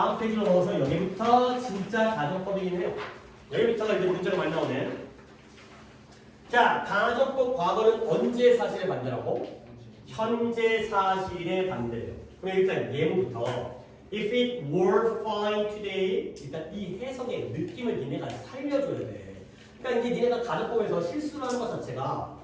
페이지로 넘어서 여기부터 진짜 가정법이긴 해요. 여기부터가 이제 문제가 많이 나오네. 자, 가정법 과거는 언제 사실의 반대라고? 현재 사실의 반대예요. 그럼 일단 예문부터 If it were fine today, 일단 이 해석의 느낌을 니네가 살려줘야 돼. 그러니까 이제 니네가 가정법에서 실수를 하는 것 자체가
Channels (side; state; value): both; identical; correlation 1.00